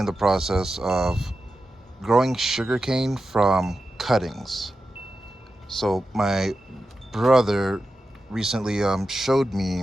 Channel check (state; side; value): normal; both; correlation 0.91